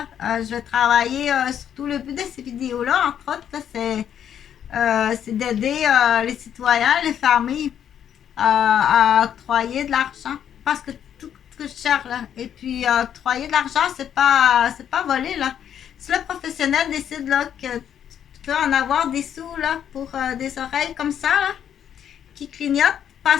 je vais travailler surtout le but de ces vidéos-là, entre autres, là, c'est d'aider les citoyens, les familles à octroyer de l'argent. Parce que tout coûte cher, là. Et puis, octroyer de l'argent, c'est pas voler, là. Si le professionnel décide, là, que tu peux en avoir des sous, là, pour des oreilles comme ça, là, qui clignotent,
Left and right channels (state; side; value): quieter; right; 9.3 dB